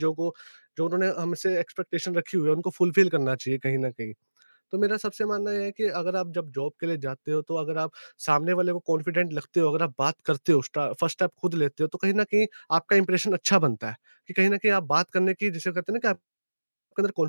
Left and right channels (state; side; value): inverted; both; correlation -1.00